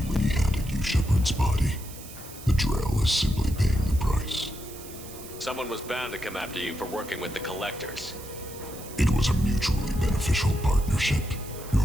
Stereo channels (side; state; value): right; noise; hiss, 15 dB below the sound